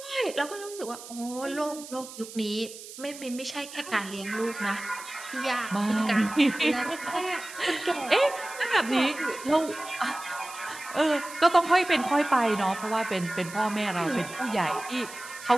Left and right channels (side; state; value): right; noise; hiss, 14 dB below the sound